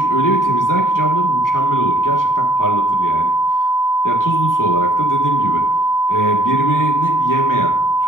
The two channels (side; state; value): right; late; 0.89 ms